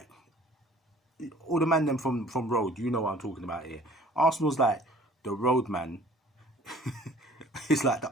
all the man them from road, you know what I'm talking about here. Arsenal's like the road man. It's like the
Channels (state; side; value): normal; both; correlation 0.52